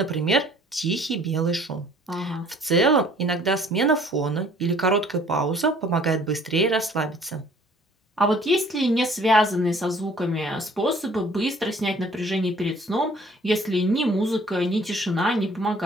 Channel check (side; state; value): both; normal; correlation 0.55